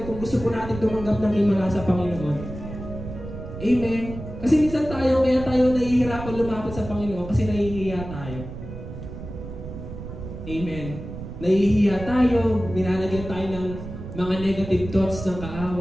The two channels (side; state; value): right; noise; rumble, 10 dB below the sound